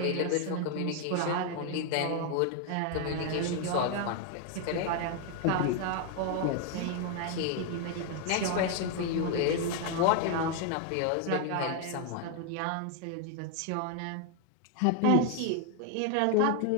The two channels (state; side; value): different; both; correlation 0.00